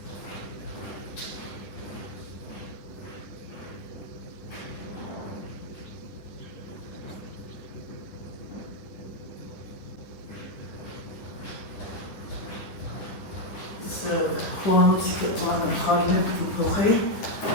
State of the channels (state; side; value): late; right; 10 ms